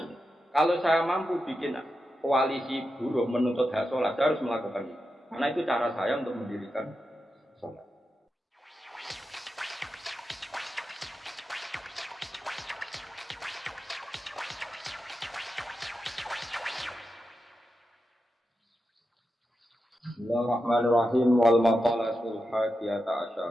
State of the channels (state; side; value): normal; both; correlation 0.89